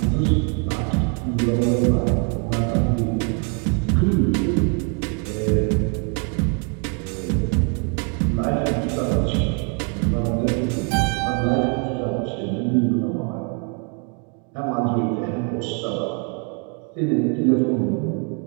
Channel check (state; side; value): quieter; left; 37.9 dB